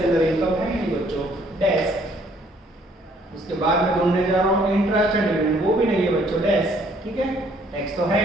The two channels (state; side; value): normal; both; correlation 0.63